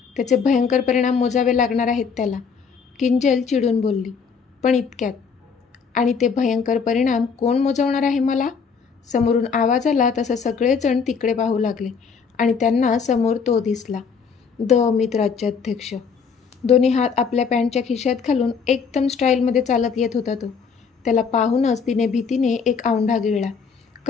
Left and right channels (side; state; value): right; quieter; 5.8 dB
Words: त्याचे भयंकर परिणाम मोजावे लागणार आहेत त्याला, किंजल चिडून बोलली. पण इतक्यात. आणि ते भयंकर परिणाम कोण मोजवणार आहे मला? समोरून आवाज आला तसं सगळेजण तिकडे पाहू लागले आणि त्यांना समोर तो दिसला, अमित राज्याध्यक्ष. दोन्ही हात आपल्या पॅन्टच्या खिशात घालून एकदम स्टाईलमध्ये चालत येत होता तो. त्याला पाहूनच तिने भीतीने एक औंढा गिळला.